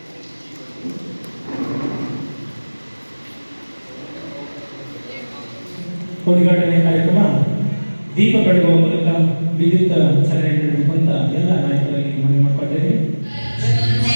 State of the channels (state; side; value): inverted; both; correlation -1.00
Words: ಉದ್ಘಾಟನೆ ಕಾರ್ಯಕ್ರಮ ದೀಪ ಬೆಳಗುವ ಮೂಲಕ ವಿದ್ಯುತ್ ಚಾಲನೆ ನೀಡಬೇಕು ಅಂತ ಎಲ್ಲ ನಾಯಕರಾಗಿ ಮನವಿ ಮಾಡಿಕೊಳ್ತೇವೆ.